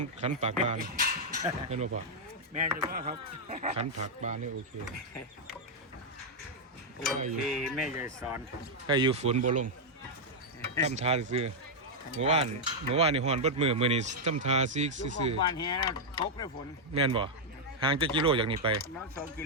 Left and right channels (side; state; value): both; normal; correlation -0.03